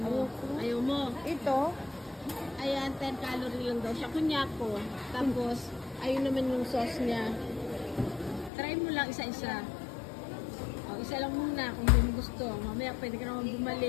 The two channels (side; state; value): right; drops out; at 8.5 s